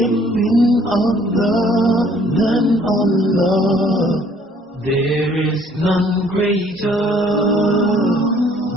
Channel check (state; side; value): normal; both; correlation 0.59